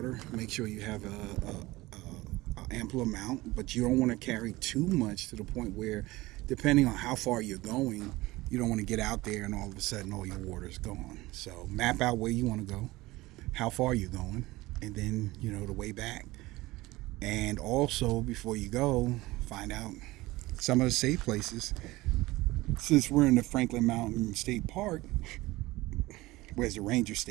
Make sure you have a ample amount, but you don't want to carry too much to the point where, depending on how far you're going, you don't want to get out there and all of a sudden all your water's gone. So map out where you want to go, how far you're going, and then, the way back. And also, before you go, find out some of the safe places. Since we're in the Franklin Mountain State Park, where's the ranger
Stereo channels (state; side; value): quieter; left; 19.6 dB